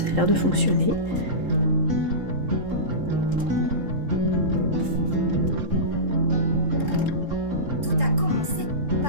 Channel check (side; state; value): left; late; 3.7 ms